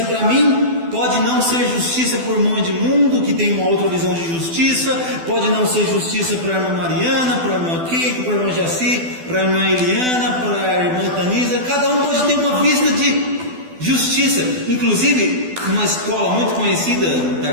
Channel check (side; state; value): left; late; 12 ms